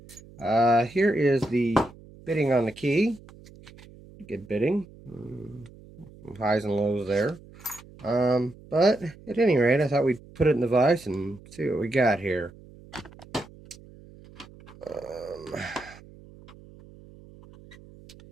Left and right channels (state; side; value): noise; right; hum, 21 dB below the sound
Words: Here is the bitting on the key. Good bitting. Some highs and lows there. But at any rate, I thought we'd put it in the vise and see what we got here. Let's